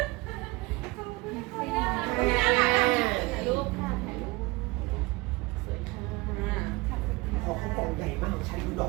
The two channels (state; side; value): quieter; left; 22.9 dB